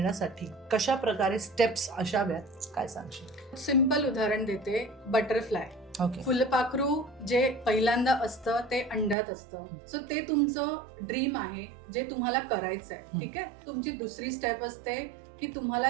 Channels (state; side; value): drops out; left; at 9.2 s